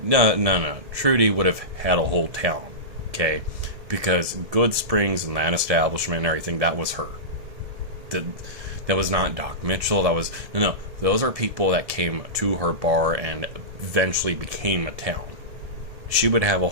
No. Trudy would have had a whole town, okay? Because Good Springs and that establishment and everything, that was her. That was not Doc Mitchell. That was... No. Those are people that came to her bar and eventually became a town. She would have a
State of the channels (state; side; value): late; left; 1.8 ms